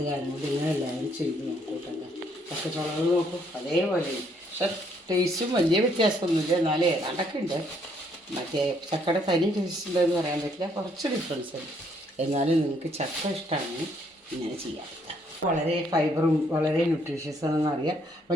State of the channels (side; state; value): both; normal; correlation 0.69